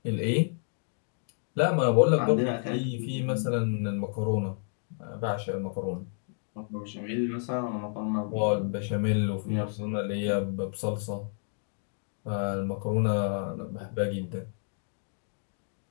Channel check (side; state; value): right; silent; 58 dB below the other